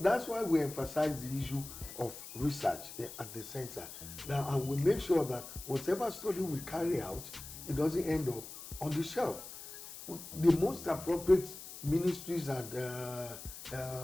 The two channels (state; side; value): noise; left; hiss, 12 dB below the sound